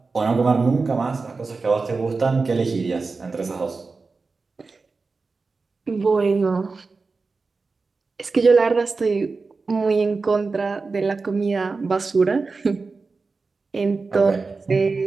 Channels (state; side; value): quieter; left; 4.1 dB